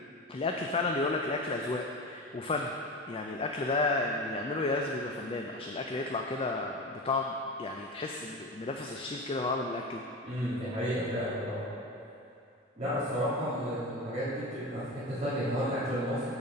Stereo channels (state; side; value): normal; both; correlation 0.27